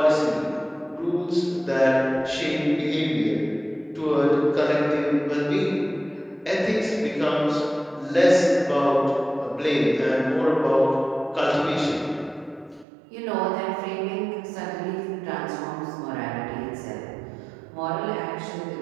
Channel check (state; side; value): drops out; left; at 12.9 s